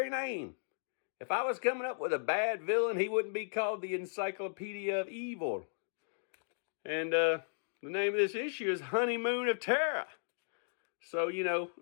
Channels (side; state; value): right; silent; digital silence